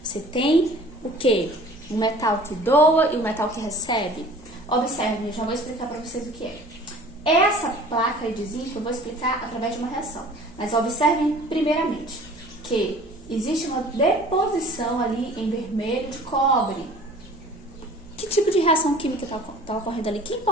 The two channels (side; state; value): right; noise; hum, 25 dB below the sound